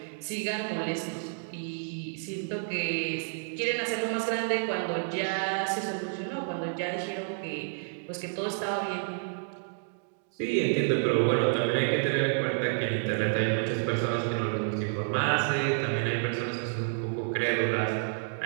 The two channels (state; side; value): silent; left; digital silence